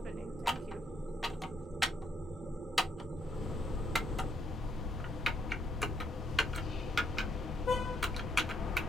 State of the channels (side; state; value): both; normal; correlation 0.75